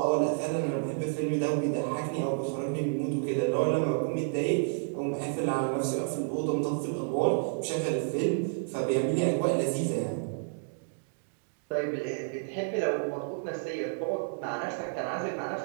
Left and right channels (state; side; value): silent; left; digital silence